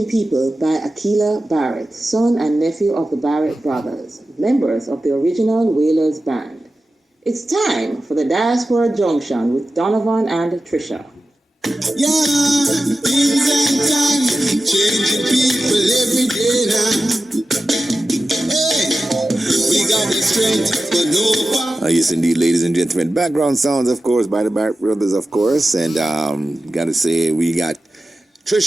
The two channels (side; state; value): both; normal; correlation 0.93